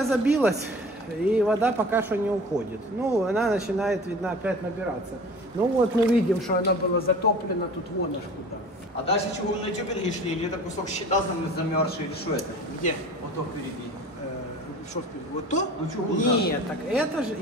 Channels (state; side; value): normal; both; correlation 0.41